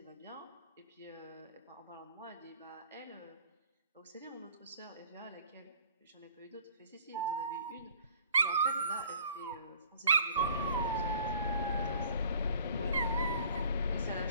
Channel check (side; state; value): both; inverted; correlation -0.52